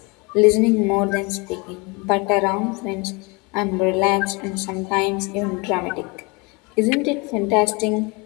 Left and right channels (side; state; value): right; quieter; 28.6 dB